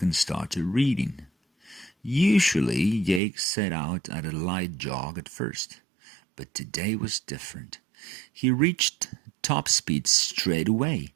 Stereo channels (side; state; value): left; drops out; at 3.2 s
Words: and started reading. Usually, Jake set out at a light jog at first, but today was different. He reached top speed straight away.